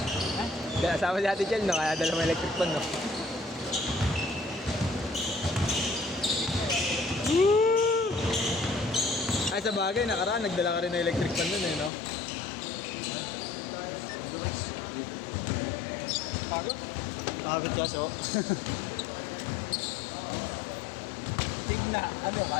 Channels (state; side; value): drops out; right; at 11.9 s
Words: Kasama si Ate Chel no? Kaya dala mo electric pan no? Ay sa bagay, nakaraan, nagdala ka rin ng electric pan nun eh no? Pagod? Pagod ka so. Tigna, ano